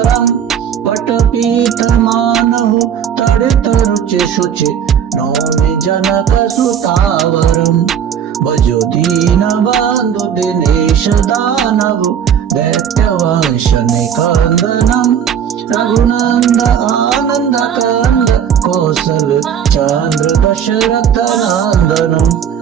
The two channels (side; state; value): left; quieter; 8.5 dB